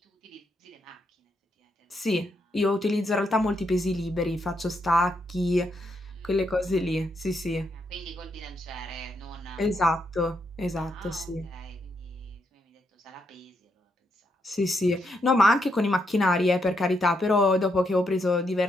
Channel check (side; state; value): both; normal; correlation 0.79